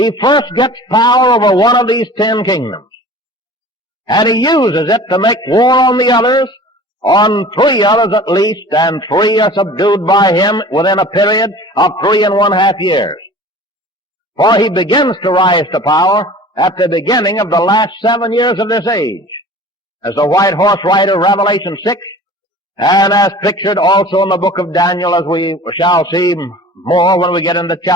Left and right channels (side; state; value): both; normal; correlation 0.43